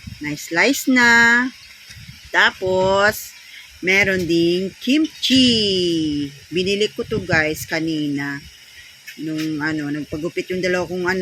Na slice na. Tapos, meron ding kimchi. Binili ko to guys kanina. Nung nagpagupit yung dalawa kong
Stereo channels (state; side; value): identical; both; correlation 1.00